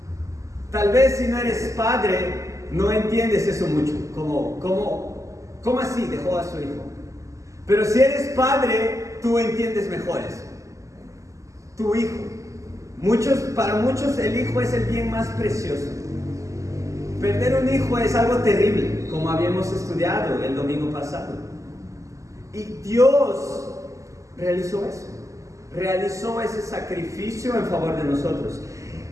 Tal vez si no eres padre, no entiendes eso mucho. ¿Cómo así dejó a su hijo? Pero si eres padre, tú entiendes mejor eso. Tu hijo. Para muchos el hijo es el bien más precioso. Perder un hijo es algo terrible, como habíamos estudiado el domingo pasado. Y Dios realizó eso. Realizó ese sacrificio en favor de nosotros.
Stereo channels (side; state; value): left; late; 0.16 ms